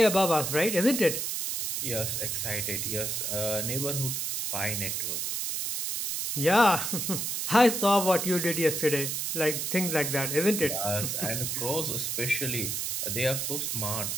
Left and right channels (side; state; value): right; noise; hiss, 1 dB below the sound